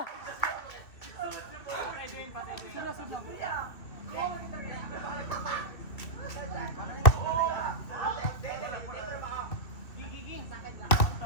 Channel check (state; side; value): late; right; 2.8 ms